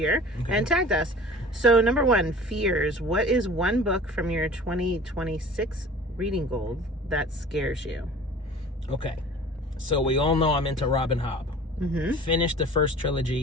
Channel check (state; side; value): normal; both; correlation 0.43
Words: and tagged us. So number 1, fears. What is one book from your 2026 reading goal that scares you? Okay, so we all know I'm into Robin Hobb. Finished the first